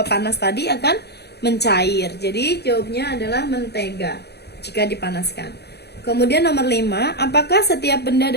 panas tadi akan mencair. Jadi jawabnya adalah mentega jika dipanaskan. Kemudian nomor 5, apakah setiap benda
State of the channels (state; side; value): late; right; 0.48 ms